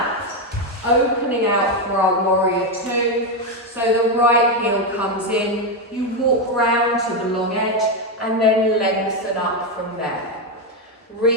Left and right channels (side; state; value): both; normal; correlation 0.07